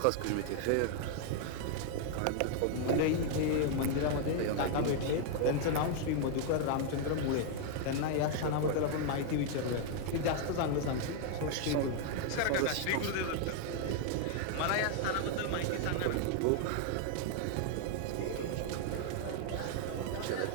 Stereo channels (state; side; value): different; both; correlation 0.00